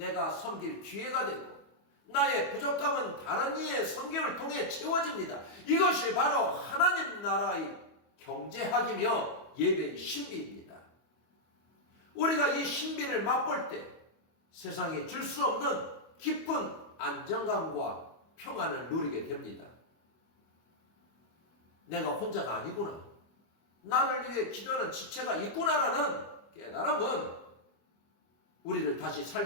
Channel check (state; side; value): late; right; 25 ms